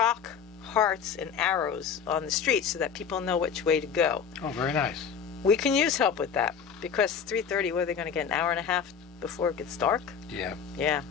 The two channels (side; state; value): right; quieter; 7.1 dB